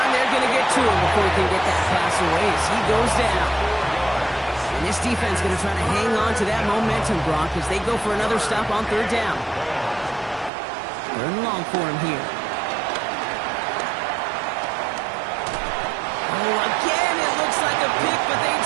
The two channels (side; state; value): left; drops out; at 10.5 s